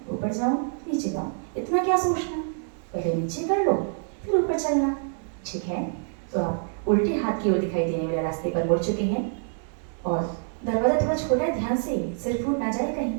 ऊपर जाऊं नीचे जाऊं, इतना क्या सोचना, पहले नीचे कर लो फिर ऊपर चलना। ठीक है, तो आप उल्टे हाथ की ओर दिखाई देने वाले रास्ते पर मुड़ चुके हैं और दरवाजा थोड़ा छोटा है, ध्यान से सिर फूट ना जाए कहीं।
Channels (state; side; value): silent; left; digital silence